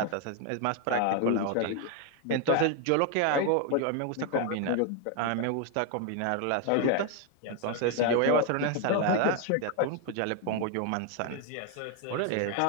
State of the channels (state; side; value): different; both; correlation 0.01